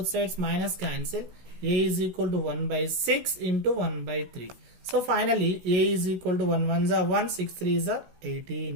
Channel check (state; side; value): late; left; 16 ms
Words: sides minus cancel. A is equal to 1 by 6 into 1 by 3. So finally A is equal to 1 1s are 1, 6 3s are